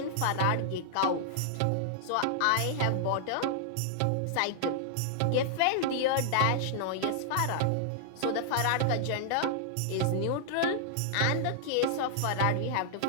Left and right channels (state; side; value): different; both; correlation -0.01